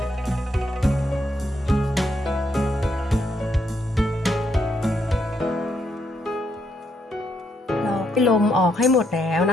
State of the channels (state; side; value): normal; both; correlation 0.77